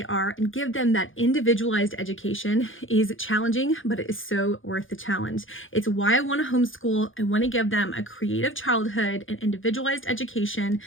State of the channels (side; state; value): right; late; 0.58 ms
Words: are and give them that individualized education is challenging, but it is so worth the challenge. It's why I want to homeschool. I want to give them a creative childhood and individualized education,